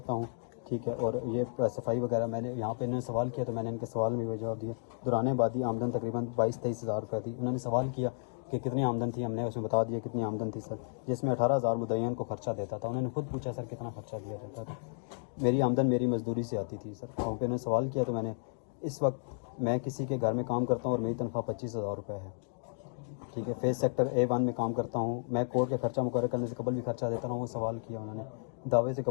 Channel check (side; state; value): right; silent; digital silence